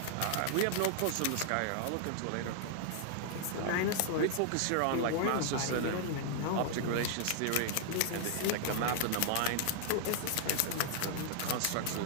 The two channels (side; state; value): both; different; correlation -0.01